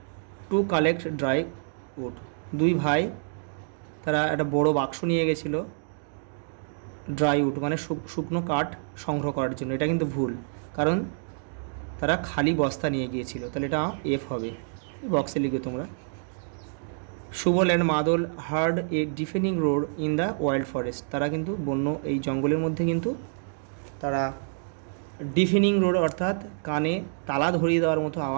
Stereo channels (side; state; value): left; silent; digital silence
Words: to collect dry wood. দুই ভাই তারা একটা বড় বাক্স নিয়ে গেছিলো ড্রাই উড মানে শুকনো কাঠ সংগ্রহ করার জন্য। এটা কিন্তু ভুল, কারণ তারা খালি বস্তা নিয়ে গিয়েছিল, তাহলে এটা এফ হবে। বক্সে লিখবে তোমরা। সুবল অ্যান্ড মাদল hard a deafening road in the wild forest. তারা কিন্তু বন্য এই জঙ্গলের মধ্যে কিন্তু তারা ডিফেনিং রোড অর্থাৎ কানে তালা ধরিয়ে দেওয়ার মতো